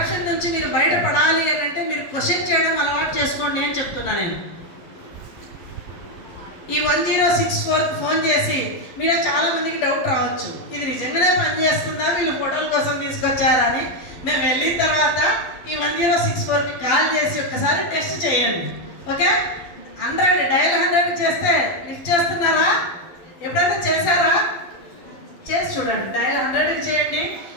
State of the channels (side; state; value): right; late; 12 ms